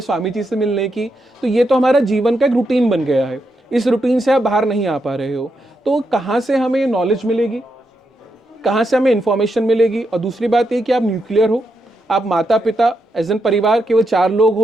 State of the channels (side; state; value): both; normal; correlation 0.83